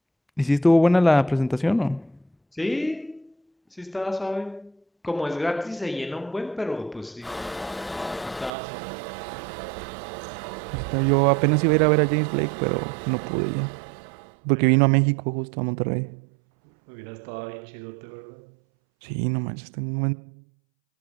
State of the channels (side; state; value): left; drops out; at 8.5 s